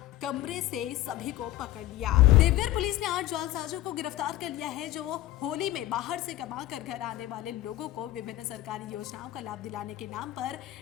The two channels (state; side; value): quieter; right; 15.1 dB